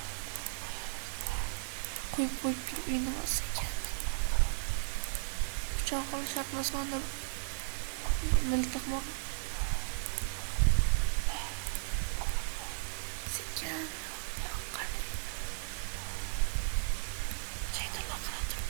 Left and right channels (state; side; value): silent; left; digital silence